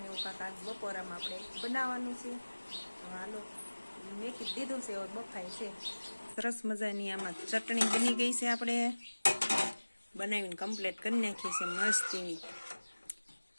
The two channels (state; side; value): inverted; both; correlation -1.00